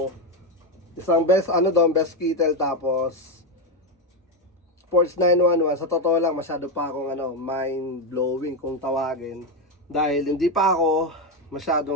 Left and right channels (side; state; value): both; normal; correlation 0.09